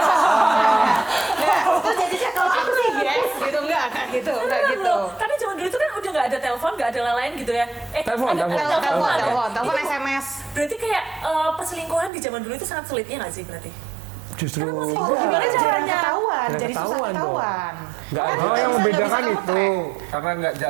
Terus jadinya kalau aku sih yes gitu enggak gitu enggak Bener gitu. loh. Tapi zaman dulu itu kan udah nggak ada telepon, nggak ada lain gitu ya. Telepon. Telepon Itu- SMS. Berarti kayak perselingkuhan di zaman dulu itu sangat sulitnya nggak sih berarti? Justru Oh, gimana caranya Jarang ketahuan? Jadi susah ketahuan dong. ketahuan. Nggak ada. Oh, yang Bisa membedakan kamu itu track. karena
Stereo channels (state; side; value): drops out; left; at 12.1 s